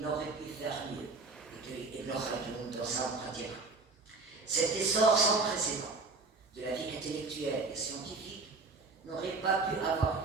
pu faire mieux, et que Ibn Khaldun dans sa pratique. Cet essor sans précédent de la vie intellectuelle et scientifique n'aurait pas pu avoir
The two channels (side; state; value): left; quieter; 3.9 dB